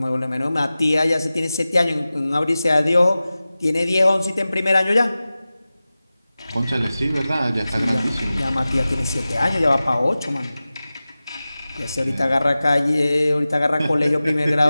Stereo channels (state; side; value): inverted; both; correlation -0.96